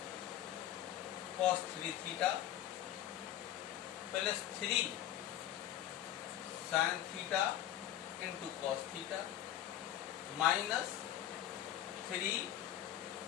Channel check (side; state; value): right; quieter; 12.1 dB